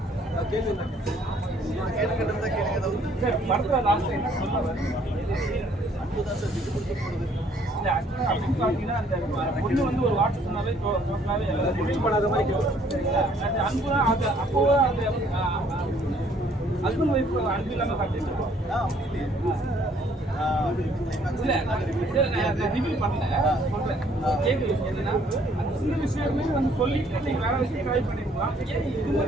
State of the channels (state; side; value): normal; both; correlation 0.62